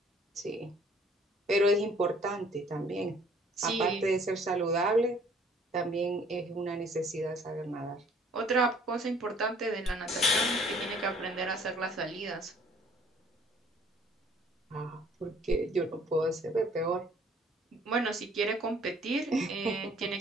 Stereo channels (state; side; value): normal; both; correlation 0.58